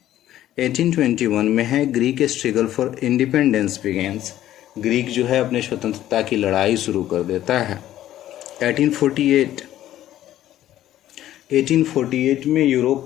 1821 में है Greek struggle for independence begins. Greek जो है अपने स्वतंत्रता की लड़ाई शुरू कर देता है। 1848 में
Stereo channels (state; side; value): quieter; right; 13.0 dB